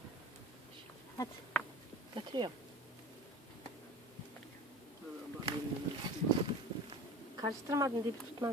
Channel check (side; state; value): both; normal; correlation 0.36